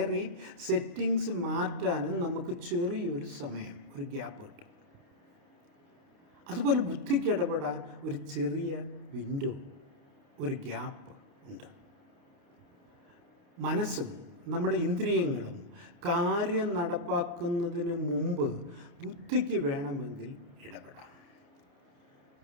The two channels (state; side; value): late; left; 29 ms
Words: സെറ്റിങ്സ് മാറ്റാനും നമുക്ക് ചെറിയൊരു സമയം, ഒരു ഗ്യാപ്പ് കിട്ടും. അതുപോലെ ബുദ്ധിക്ക് ഇടപെടാൻ ഒരു ചെറിയ വിൻഡോ, ഒരു ഗ്യാപ്പ് ഉണ്ട്. മനസ്സും നമ്മുടെ ഇന്ദ്രിയങ്ങളും കാര്യം നടപ്പാക്കുന്നതിന് മുമ്പ് ബുദ്ധിക്ക് വേണമെങ്കിൽ ഇടപെടാം.